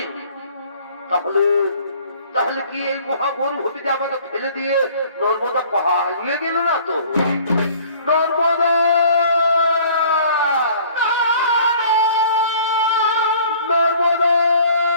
তাহলে তাহলে কি এই মহামরুভূমিতে আমাকে ফেলে দিয়ে নর্মদা পালিয়ে গেল না তো? নর্মদা নর্মদা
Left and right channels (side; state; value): both; inverted; correlation -0.52